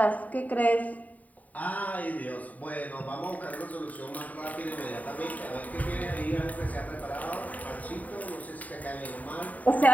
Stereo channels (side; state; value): right; late; 0.073 ms